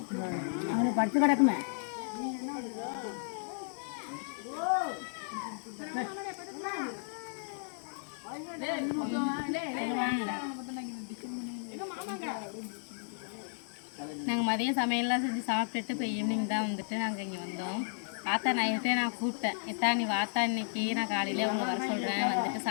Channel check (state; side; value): silent; right; digital silence